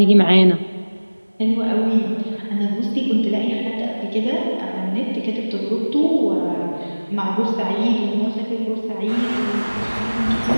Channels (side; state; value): both; inverted; correlation -1.00